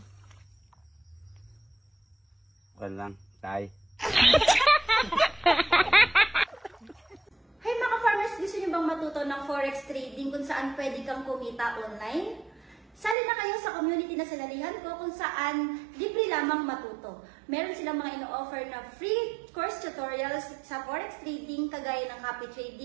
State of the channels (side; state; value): left; drops out; at 13.2 s